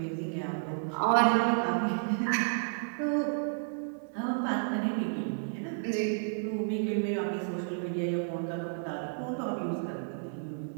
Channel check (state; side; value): silent; left; digital silence